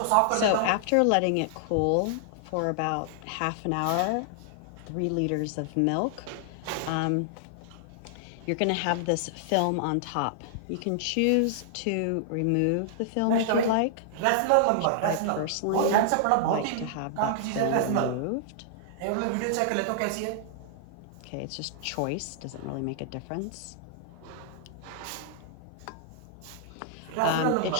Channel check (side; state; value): both; different; correlation -0.01